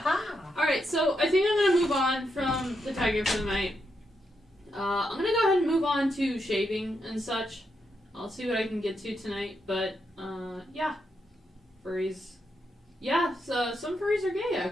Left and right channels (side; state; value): both; normal; correlation 0.82